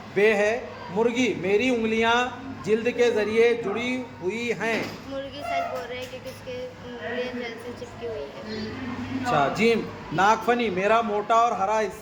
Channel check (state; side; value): identical; both; correlation 1.00